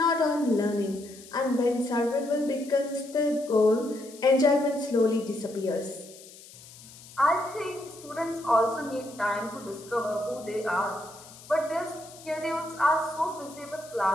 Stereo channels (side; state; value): left; noise; hiss, 19 dB below the sound